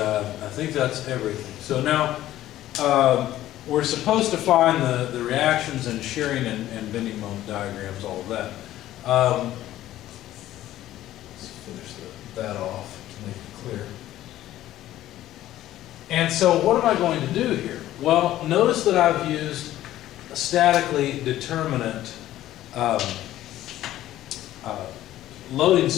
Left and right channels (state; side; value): quieter; right; 13.9 dB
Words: think that's everything. So now we're supposed to find the reactions and shearing and bending moment diagrams, all of that. Let's finish that off to make it clear. And so what am I going to do here? Well, notice that I've used a statically determinate loading